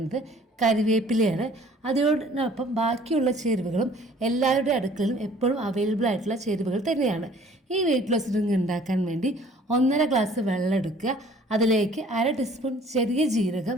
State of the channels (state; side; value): normal; both; correlation 0.53